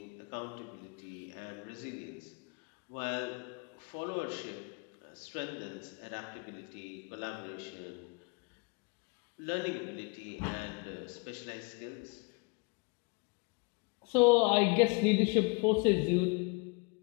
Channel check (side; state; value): right; quieter; 31.1 dB